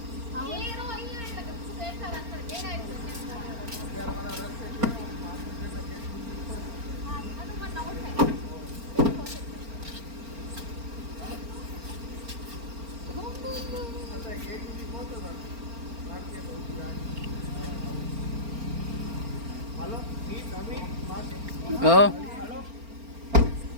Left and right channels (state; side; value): late; left; 4.4 ms